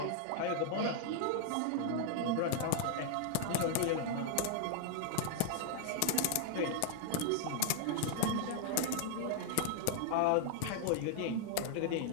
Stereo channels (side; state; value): both; different; correlation -0.01